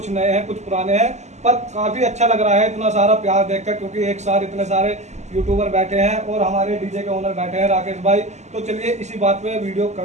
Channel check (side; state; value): left; late; 0.33 ms